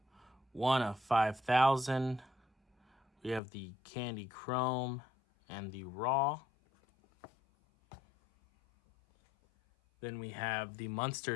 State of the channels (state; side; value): drops out; right; at 3.4 s